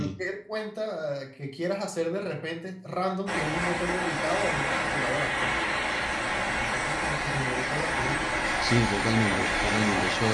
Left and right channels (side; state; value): both; identical; correlation 1.00